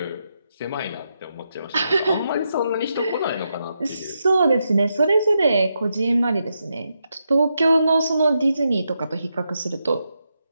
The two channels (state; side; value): inverted; both; correlation -0.84